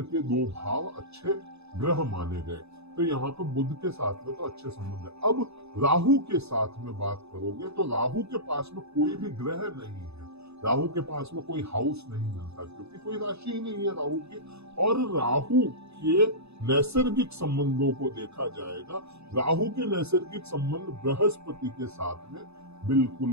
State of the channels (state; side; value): late; left; 0.80 ms